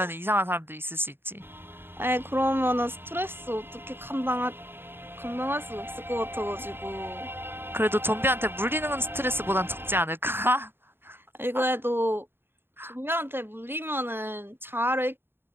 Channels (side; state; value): left; late; 0.11 ms